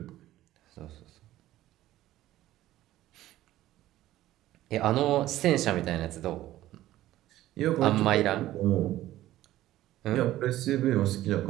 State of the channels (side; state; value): left; quieter; 14.6 dB